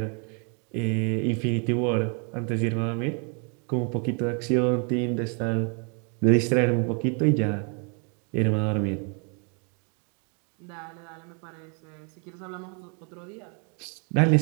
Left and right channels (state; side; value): quieter; left; 38.0 dB